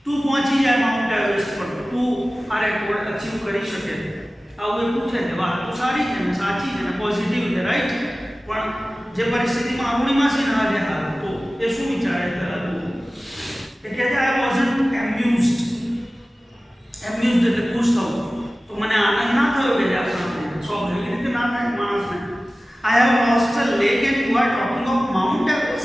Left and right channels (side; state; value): both; normal; correlation 0.97